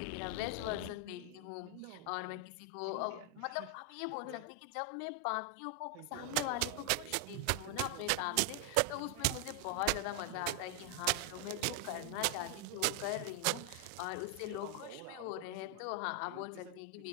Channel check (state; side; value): different; both; correlation 0.00